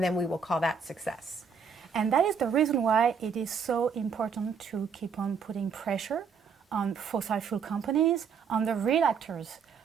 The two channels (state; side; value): quieter; left; 6.1 dB